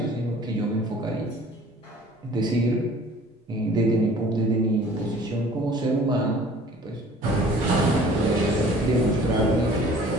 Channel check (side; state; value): both; normal; correlation 0.49